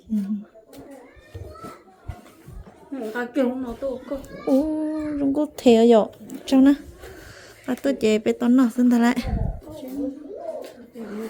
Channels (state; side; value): identical; both; correlation 1.00